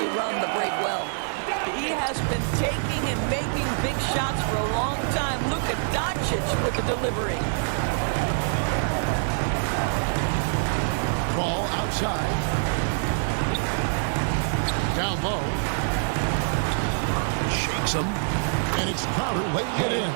run the break well. He has been taking and making big shots for a long time. Look at Doncic with the delivery. Ball outside. Down low. Shakes him. And it's Crowder laying it in.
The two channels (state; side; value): silent; left; digital silence